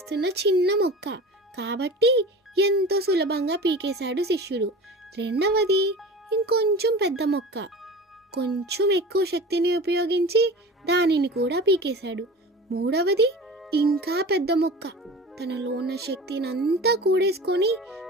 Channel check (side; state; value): both; normal; correlation 0.35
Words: చిన్న మొక్క కాబట్టి ఎంతో సులభంగా పీకేశాడు శిష్యుడు. రెండవది ఇంకొంచెం పెద్ద మొక్క, కొంచెం ఎక్కువ శక్తిని ఉపయోగించి దానిని కూడా పీకేశాడు. మూడవది ఇంకా పెద్ద మొక్క, తనలో ఉన్న శక్తిని అంతా కూడేసుకొని